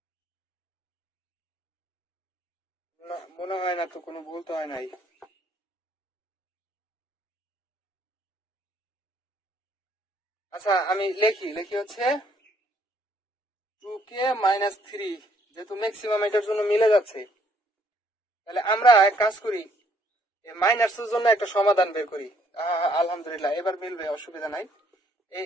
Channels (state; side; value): normal; both; correlation 0.66